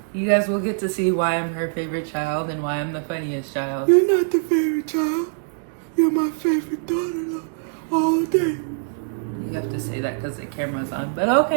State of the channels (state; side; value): silent; left; digital silence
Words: you guys will get to see why I'm her favorite child and why I'm the funniest child. You're not the favorite child. You're my favorite daughter, though, all day. You have to say that because the camera's on. But